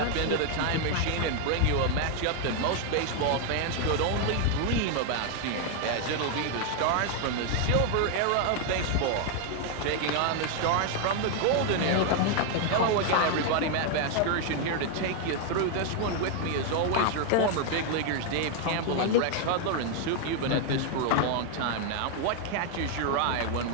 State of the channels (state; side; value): different; both; correlation 0.00